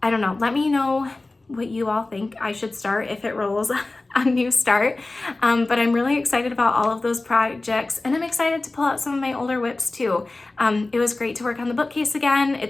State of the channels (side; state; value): right; quieter; 3.1 dB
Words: I don't know. Let me know what you all think I should start if it rolls a new start. But I'm really excited about all of those projects, and I'm excited to pull out some of my older WIPs too. It was great to work on the bookcase again.